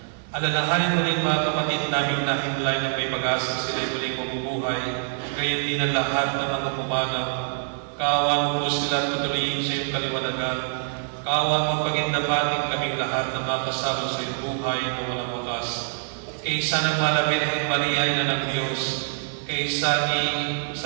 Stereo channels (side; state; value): left; silent; digital silence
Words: Alalahanin mo rin mga kapatid namin na himlay ng may pag-asa sila'y muling mabubuhay, gayon din ang lahat ng mga pumanaw. Kaawan mo po sila at patuloyin sa iyong kaliwanagan. Kaawan mo pagindapatin kaming lahat na makasama sa iyong buhay na walang wakas. Kaysa ng Mahal na Birhen Maria, Ina ng Diyos, kaysa ni